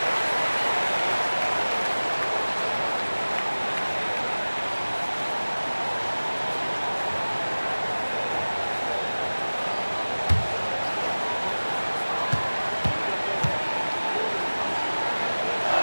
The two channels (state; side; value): inverted; both; correlation -1.00